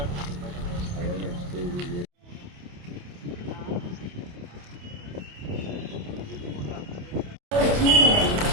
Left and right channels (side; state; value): left; late; 28 ms